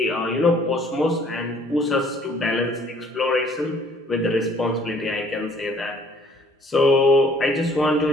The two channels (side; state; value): both; normal; correlation 0.58